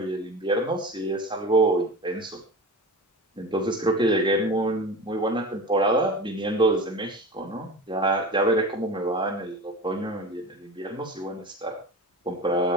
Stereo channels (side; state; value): both; normal; correlation 0.31